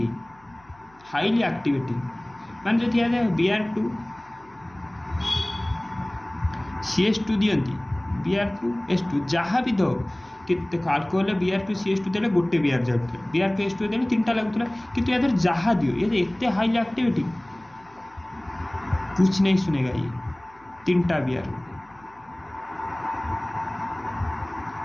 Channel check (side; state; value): left; noise; hum, 30 dB below the sound